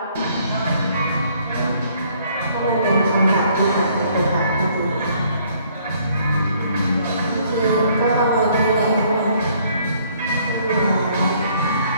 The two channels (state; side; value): inverted; both; correlation -0.63